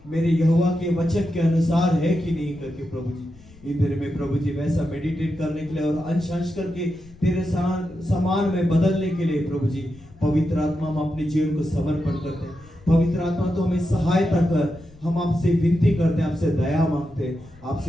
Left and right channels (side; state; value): left; noise; rumble, 24 dB below the sound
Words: मेरे यहोवा के वचन के अनुसार है कि नहीं करके प्रभु जी। इन दिन में प्रभु जी वैसा मेडिटेट करने के लिए और अंश अंश करके तेरे समान में बदलने के लिए प्रभु जी पवित्र आत्मा हम अपने जीवन को समर्पण करते हैं। पवित्र आत्मा तो हमें सहायता कर, हम आपसे विनती करते हैं, आपसे दया मांगते हैं,